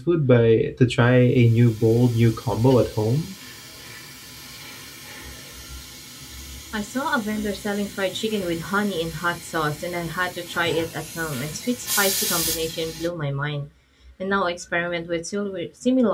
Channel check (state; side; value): identical; both; correlation 1.00